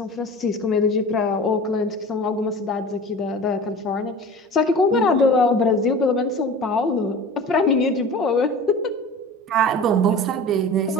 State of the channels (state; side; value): normal; both; correlation 0.38